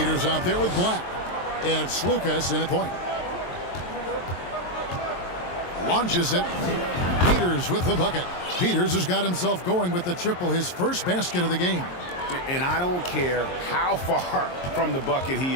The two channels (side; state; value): right; late; 23 ms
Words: out there with Black. And it's Lucas in at point. Launches it. Peters with the bucket. Peters has got himself going with the triple, his first basket of the game. And I don't care how far from the bucket